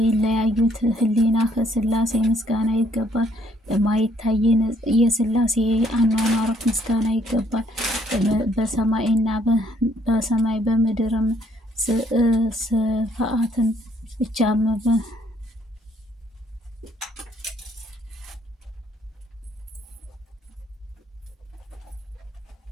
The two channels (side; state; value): both; normal; correlation 0.66